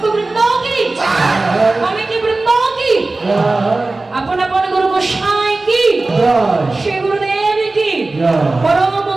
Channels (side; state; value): left; quieter; 3.2 dB